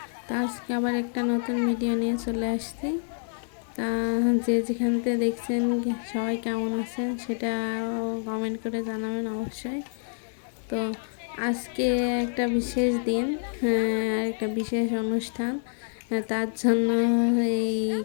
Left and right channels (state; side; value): silent; right; digital silence